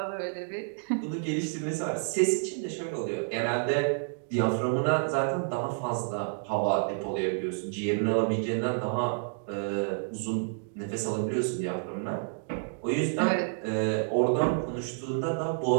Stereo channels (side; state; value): left; silent; digital silence